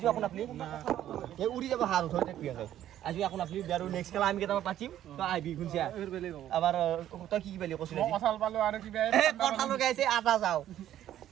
আপোন আপনি এই উৰি যাব হাত ধৰি থাকি আছে আজি আপোন আপনি আৰু নেক্সট খেলা আমি কেইটা পাতিম তো আইবি গুনছিয়া আবাৰ তই কি পালি কৈছিল কঁঠাল পালো আৰু কিবা কঁঠাল লগাইছে আটা যাও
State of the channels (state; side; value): quieter; left; 11.9 dB